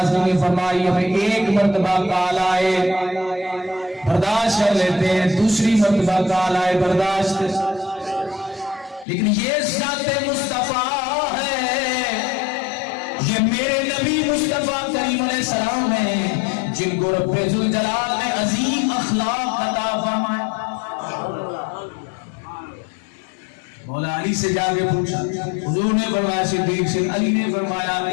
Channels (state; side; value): drops out; right; at 9.1 s